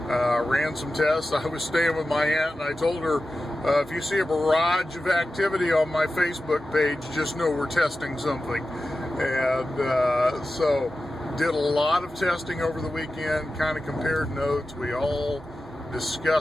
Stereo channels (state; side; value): normal; both; correlation 0.93